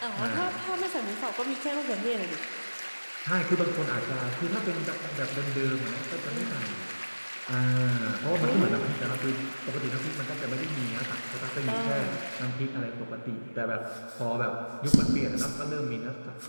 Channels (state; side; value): inverted; both; correlation -1.00